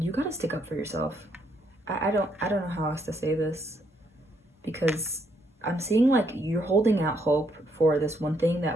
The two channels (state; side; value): normal; both; correlation 0.73